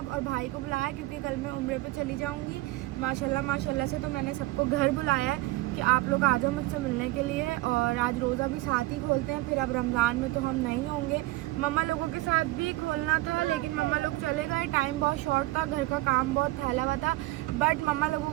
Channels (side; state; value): left; quieter; 18.7 dB